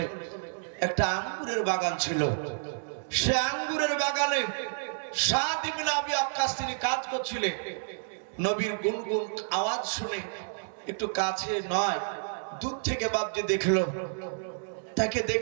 একটা আঙ্গুরের বাগান ছিল। সে আঙ্গুরের বাগানে সাদ ইবনে আবি ওয়াক্কাস তিনি কাজ করছিলেন। নবীর গুনগুন আওয়াজ শুনে একটু কাছে নয়, দূর থেকে বাপজি দেখলো, তাকে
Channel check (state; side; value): silent; left; digital silence